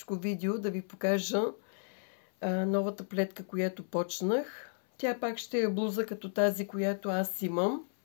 видео да ви покажа новата плетка, която почнах. Тя пак ще е блуза като тази, която аз имам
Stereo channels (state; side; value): silent; right; 56 dB below the other